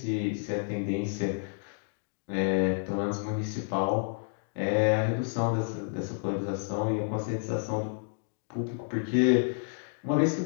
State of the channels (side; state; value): right; silent; digital silence